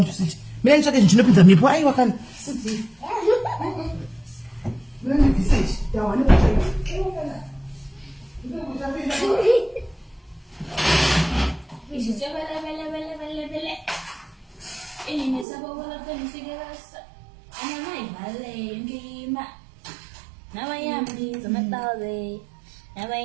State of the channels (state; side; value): drops out; left; at 15.5 s